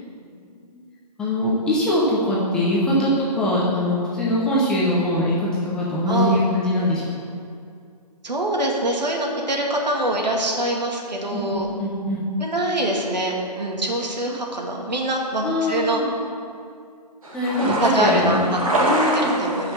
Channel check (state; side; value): normal; both; correlation -0.05